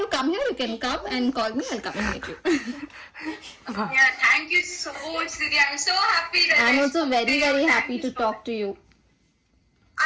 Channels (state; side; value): identical; both; correlation 1.00